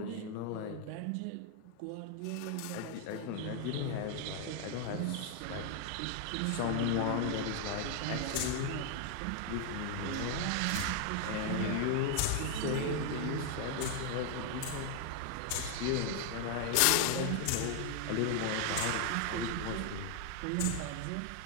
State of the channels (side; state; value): both; different; correlation 0.00